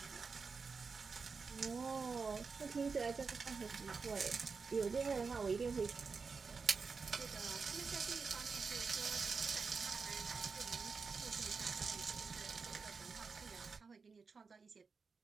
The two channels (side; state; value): left; quieter; 4.9 dB